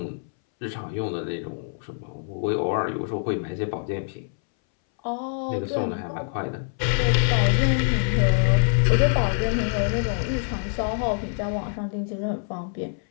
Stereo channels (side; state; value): right; silent; 62 dB below the other